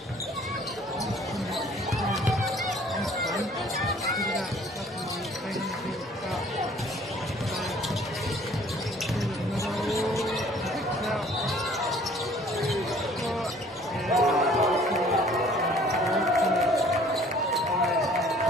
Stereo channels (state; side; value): normal; both; correlation 0.55